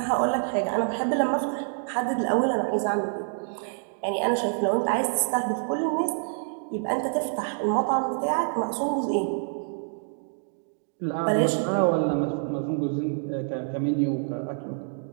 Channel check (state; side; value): silent; left; digital silence